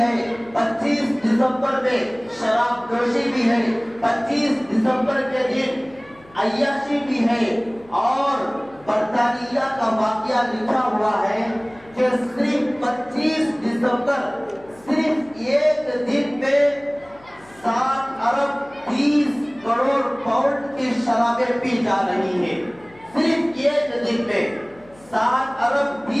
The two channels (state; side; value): noise; left; hum, 27 dB below the sound